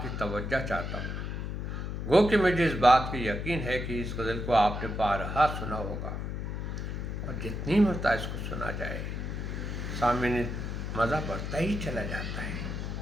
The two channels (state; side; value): noise; left; hum, 4 dB below the sound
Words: کی توجہ چاہتا ہوں۔ گو کہ مجھے اس بات کی یقین ہے کہ اس غزل کو آپ نے بارہا سنا ہوگا، اور جتنی مرتبہ اس کو سنا جائے سامعین مزہ بڑھتا ہی چلا جاتا ہے۔